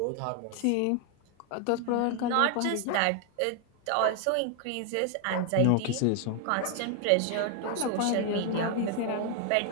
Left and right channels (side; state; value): both; different; correlation 0.00